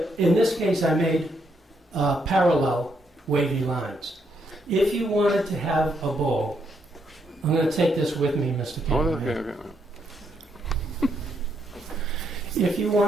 in this case I made parallel wavy lines. If you wanted to have a bowl, I'm going to take this with me, Mr. Oh, Cameraman. okay. If you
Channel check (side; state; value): both; normal; correlation 0.76